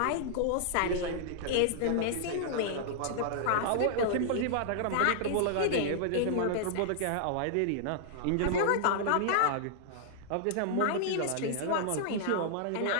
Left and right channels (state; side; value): different; both; correlation -0.01